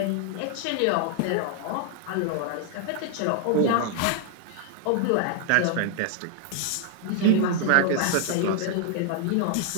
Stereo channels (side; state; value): both; different; correlation 0.00